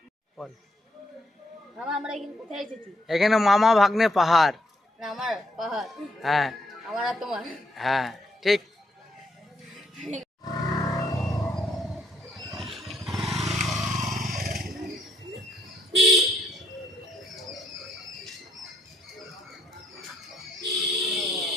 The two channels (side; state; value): both; normal; correlation 0.73